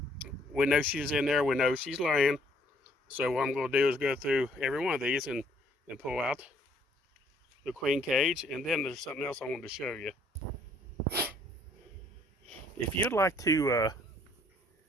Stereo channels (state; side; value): normal; both; correlation 0.63